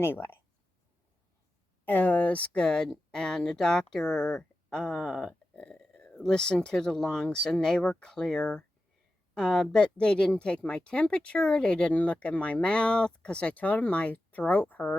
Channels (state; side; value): normal; both; correlation 0.92